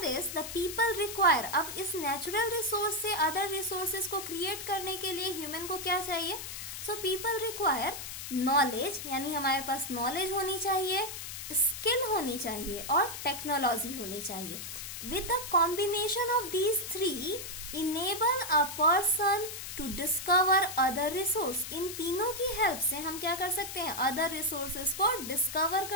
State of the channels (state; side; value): noise; left; hiss, 8 dB below the sound